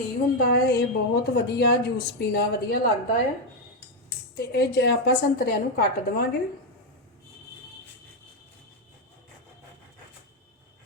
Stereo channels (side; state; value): both; normal; correlation 0.04